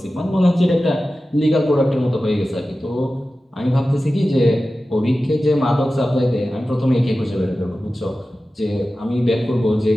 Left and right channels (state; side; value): normal; both; correlation 0.94